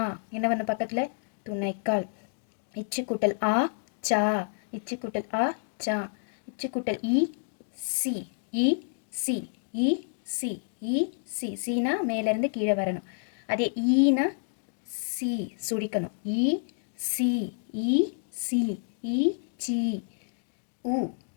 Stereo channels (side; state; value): right; silent; digital silence